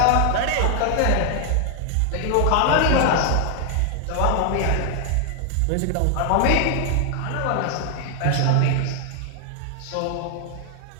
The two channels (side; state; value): both; different; correlation 0.00